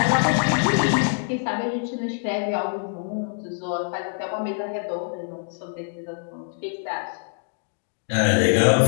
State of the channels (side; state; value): right; silent; 62 dB below the other